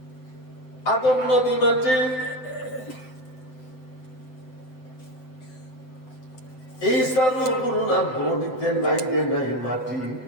আদম নবী মাটি, এই সালু গুরুনা বডিতে নাই রে নাই মাটি।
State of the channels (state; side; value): late; right; 7.8 ms